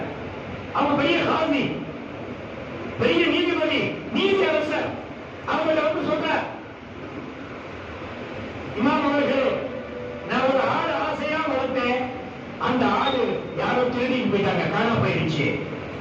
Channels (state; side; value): identical; both; correlation 1.00